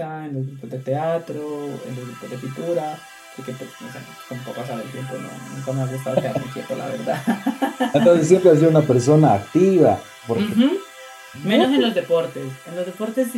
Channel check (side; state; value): both; identical; correlation 1.00